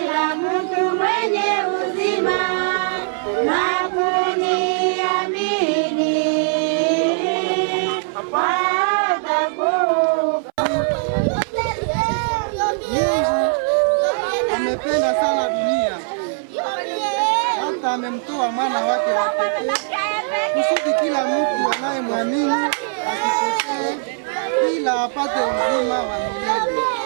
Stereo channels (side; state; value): left; silent; 62 dB below the other